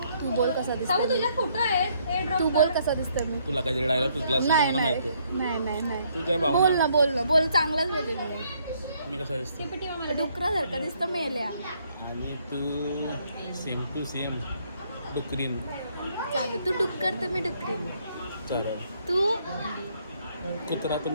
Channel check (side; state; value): both; inverted; correlation -0.69